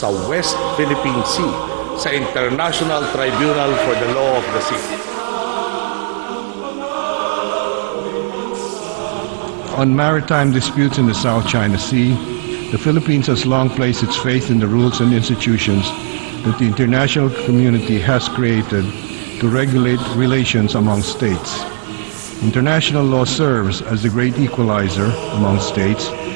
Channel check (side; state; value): left; silent; digital silence